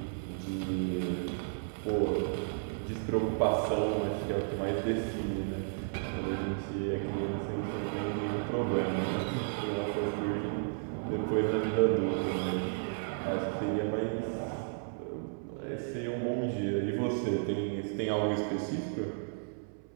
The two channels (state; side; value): silent; left; 56 dB below the other